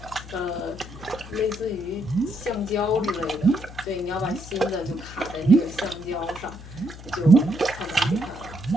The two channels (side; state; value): left; noise; hum, 15 dB below the sound